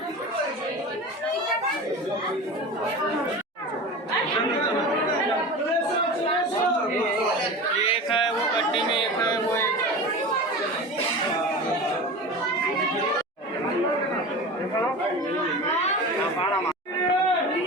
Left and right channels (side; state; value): both; normal; correlation 0.31